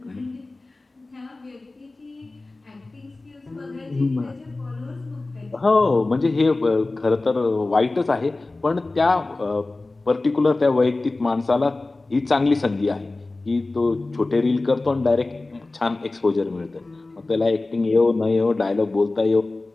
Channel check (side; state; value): right; quieter; 3.2 dB